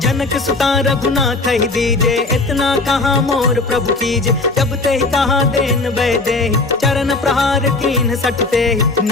जनक सुता रघुनाथ ही दीजे, इतना कहाँ मोर प्रभु कीजे, जब ते कहा देन वैदे, चरण प्रहार कीन सटते,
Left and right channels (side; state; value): right; quieter; 3.3 dB